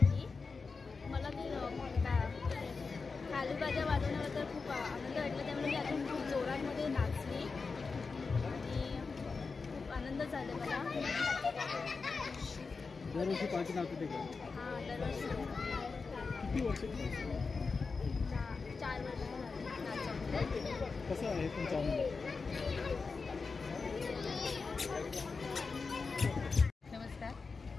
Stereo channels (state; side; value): quieter; right; 4.6 dB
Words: मला ते खालूबाजा वाजवण्याबद्दल खूप आनंद वाटला, त्यामुळे मी अजून खूप जोरांमध्ये नाचली आणि खूप आनंद झाला मला. दरवर्षी पालखी नाचवते का? हां, दरवर्षी. किती वर्ष? 4 वर्ष नाचवते. कसं आहे तुमचा आनंद? नमस्कार,